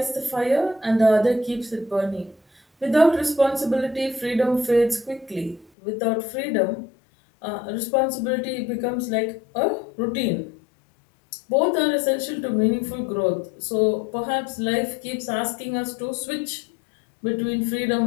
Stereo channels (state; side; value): drops out; right; at 5.7 s